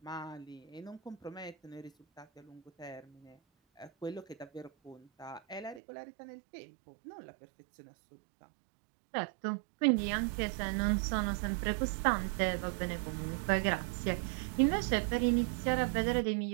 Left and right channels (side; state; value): left; drops out; at 5.8 s